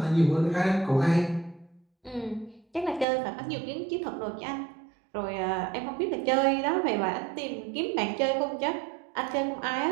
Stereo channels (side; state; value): left; drops out; at 3.1 s